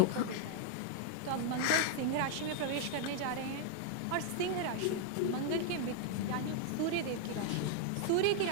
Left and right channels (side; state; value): both; different; correlation 0.00